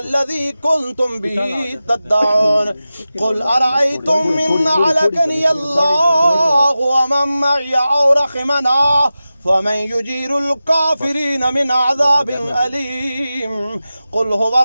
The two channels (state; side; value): inverted; both; correlation -0.94